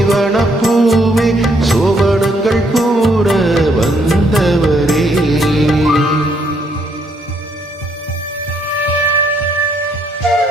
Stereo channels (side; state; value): both; normal; correlation 0.71